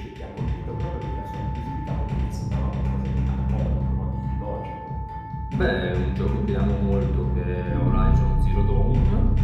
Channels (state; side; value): identical; both; correlation 1.00